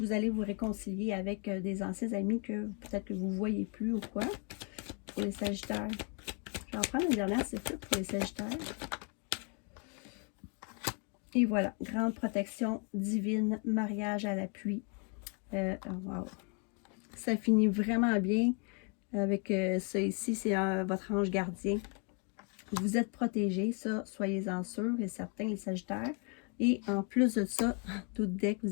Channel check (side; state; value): right; quieter; 35.7 dB